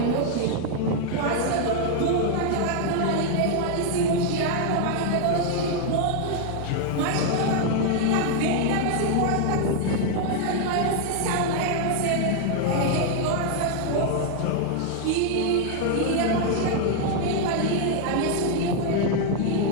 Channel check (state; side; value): different; both; correlation 0.00